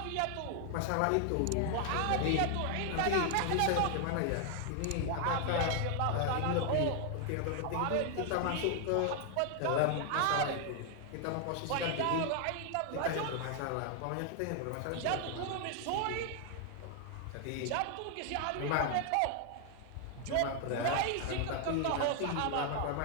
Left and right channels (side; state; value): both; different; correlation 0.00